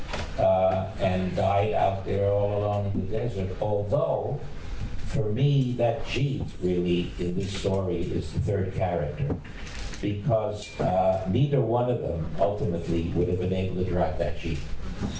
and died out there all alone in the desert, although, for me, that Jeep really, in this story, is the third character. Because neither one of them ultimately would have been able to drive that Jeep.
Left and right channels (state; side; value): identical; both; correlation 1.00